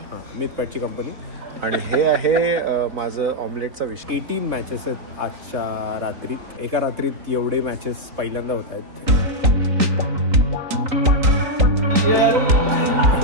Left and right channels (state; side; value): late; left; 3.9 ms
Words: मिथपॅटची कंपनी. आणि हे आहे माझं ऑमलेटचा विष. 18 मॅचेस आहेत आजच्या रात्रीत. एका रात्रीत एवढे मॅचेस पहिल्यांदा होत आहेत.